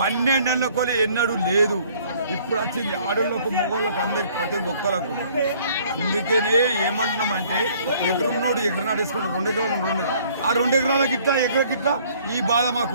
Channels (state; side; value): inverted; both; correlation -0.58